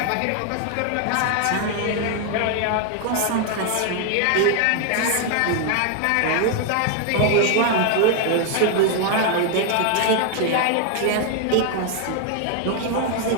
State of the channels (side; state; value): both; different; correlation 0.00